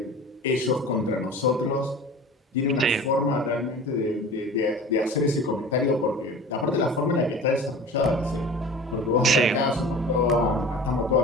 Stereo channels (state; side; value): normal; both; correlation 0.39